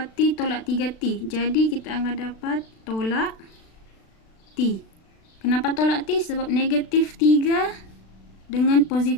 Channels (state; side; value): late; right; 36 ms